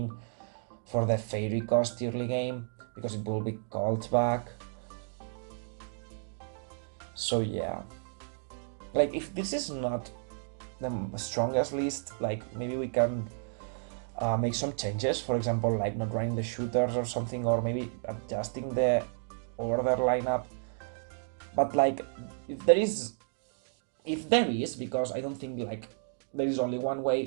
for the Fairy cost early game, because it will be called back. So yeah, like, if this is not the strongest list, like, maybe we can make some changes, for example, like not running the shooters or something, or maybe adjusting the order lineup. But like, if there is, because I don't think like there is only one way,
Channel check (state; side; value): silent; left; digital silence